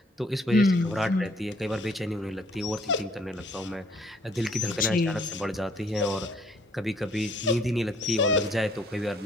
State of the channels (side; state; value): both; normal; correlation 0.62